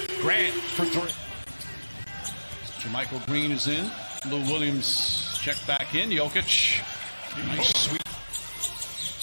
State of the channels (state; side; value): inverted; both; correlation -1.00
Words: Grant for 3. Jermichael Green is in. Lou Williams check back in. Jokic. Nice sweep.